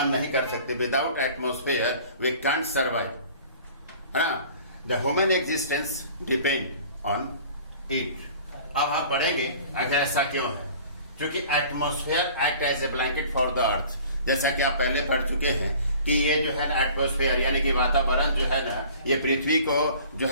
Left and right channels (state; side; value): inverted; both; correlation -0.47